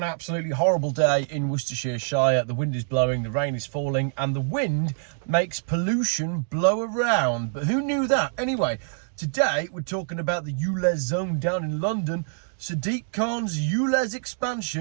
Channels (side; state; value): left; silent; digital silence